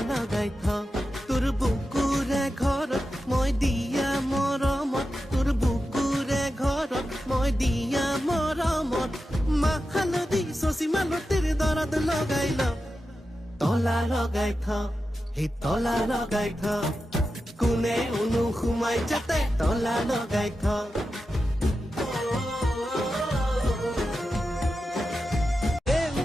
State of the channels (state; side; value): normal; both; correlation 0.91